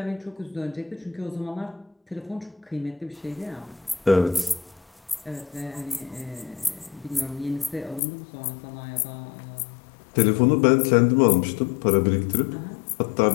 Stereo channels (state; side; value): drops out; right; at 8.0 s